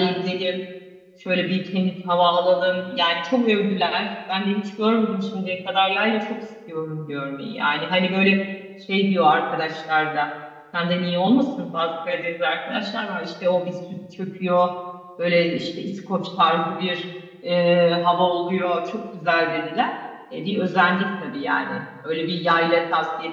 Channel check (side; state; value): both; identical; correlation 1.00